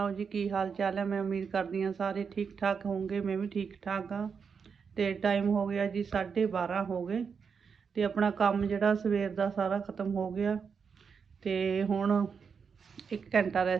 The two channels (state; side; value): quieter; left; 6.1 dB